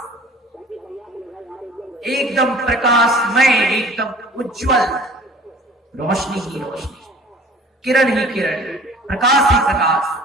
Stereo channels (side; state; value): both; normal; correlation 0.48